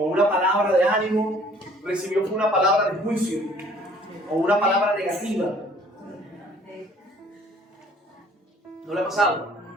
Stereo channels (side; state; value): both; normal; correlation 0.56